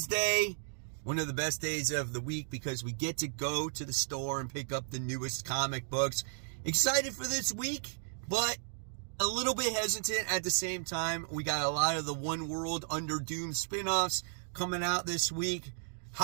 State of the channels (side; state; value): left; silent; digital silence